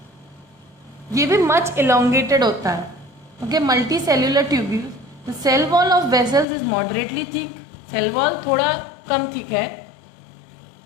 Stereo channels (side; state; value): right; drops out; at 6.5 s